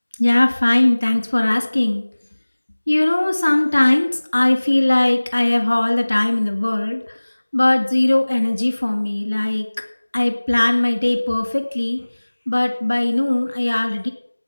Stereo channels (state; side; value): inverted; both; correlation -1.00